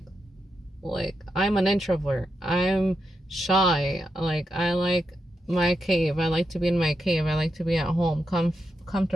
I'm an introvert, I'm shy, like I like my cave, I like to be in my cave, I like to be at home,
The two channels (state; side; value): normal; both; correlation 0.85